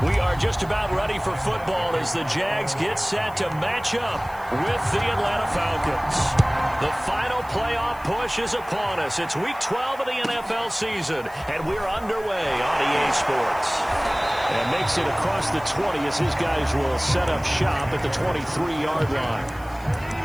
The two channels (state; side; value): noise; left; hiss, 24 dB below the sound